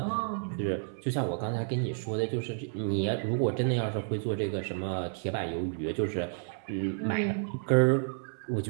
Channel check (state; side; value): silent; left; 55 dB below the other